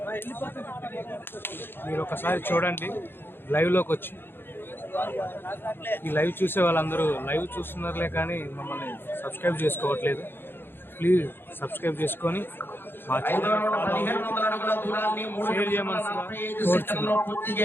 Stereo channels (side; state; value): right; late; 0.10 ms